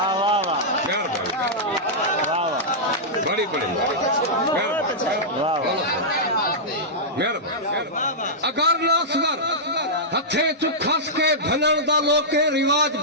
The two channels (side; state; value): both; normal; correlation -0.11